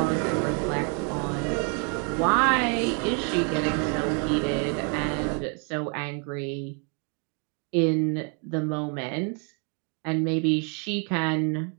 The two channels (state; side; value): quieter; left; 38.3 dB